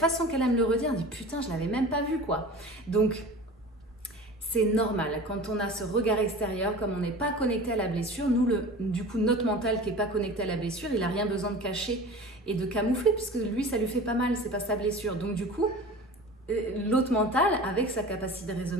qu'elle aime le redire, elle me dit putain, je l'avais même pas vu quoi. Donc, c'est normal. Quand on a ce regard extérieur, comme on n'est pas connecté à la blessure, nous, du coup, notre mental qui n'est pas connecté à la blessure, il n'a rien besoin de cacher et de camoufler puisque lui, ça lui fait pas mal, c'est pas sa blessure. Donc du coup, l'autre mental, avec sa capacité de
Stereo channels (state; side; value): normal; both; correlation 0.37